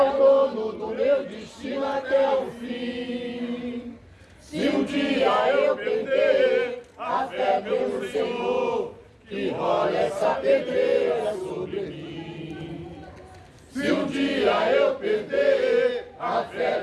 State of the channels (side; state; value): both; identical; correlation 1.00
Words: o dono do meu destino até o fim. Se um dia eu perder a fé pelo Senhor, que rola essa pedreira sobre mim. Se um dia eu perder a fé